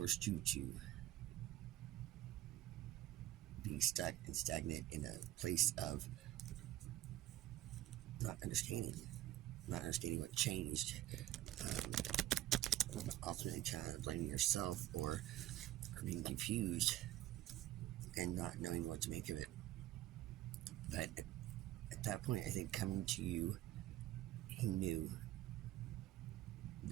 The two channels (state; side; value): quieter; left; 14.1 dB